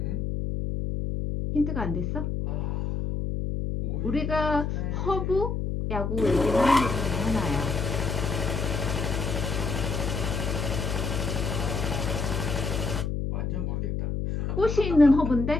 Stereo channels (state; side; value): noise; left; hum, 1 dB below the sound